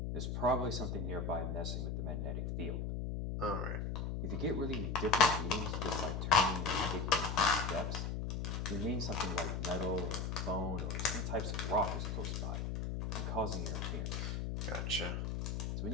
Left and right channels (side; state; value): left; noise; hum, 2 dB below the sound